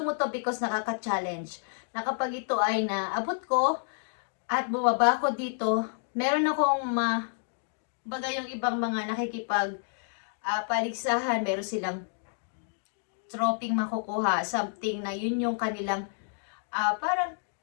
to because nakaka-challenge. Na kapag ito ay naabot ko at bumaba ko dito, meron akong baga yung ibang mga nakikipag paligsahan, meron silang troping makukuha, something na yun yung kanilang parang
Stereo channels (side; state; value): right; silent; digital silence